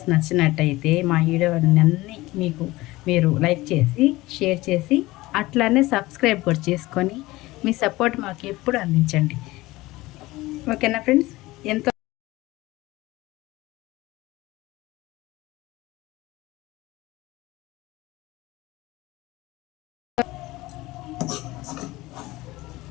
నచ్చినట్టయితే మా వీడియోలన్నీ మీరు లైక్ చేసి షేర్ చేసి అట్లానే సబ్స్క్రైబ్ కూడా చేసుకొని మీ సపోర్ట్ మాకు ఎప్పుడు అందించండి. ఓకేనా ఫ్రెండ్స్? ఎంతో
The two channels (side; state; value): right; quieter; 19.4 dB